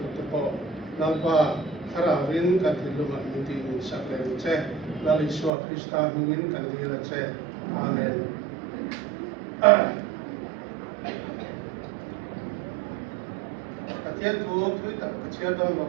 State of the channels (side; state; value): left; drops out; at 5.5 s